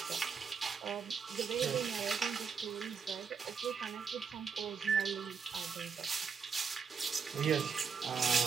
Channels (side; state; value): left; quieter; 5.9 dB